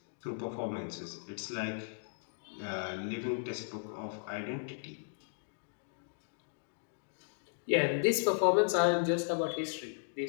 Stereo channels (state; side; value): silent; right; digital silence